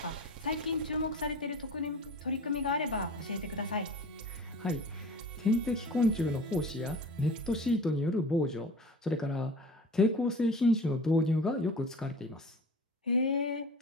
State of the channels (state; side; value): normal; both; correlation 0.39